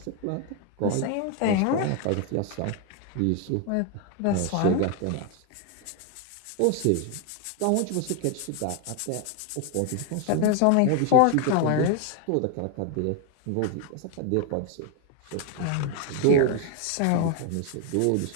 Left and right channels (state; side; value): different; both; correlation 0.01